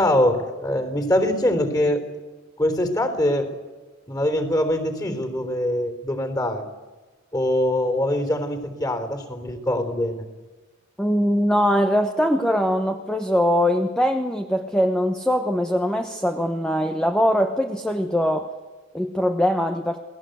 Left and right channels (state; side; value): normal; both; correlation 0.79